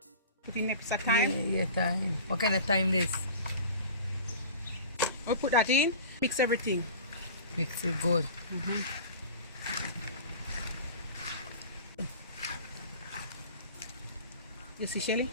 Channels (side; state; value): both; inverted; correlation -0.39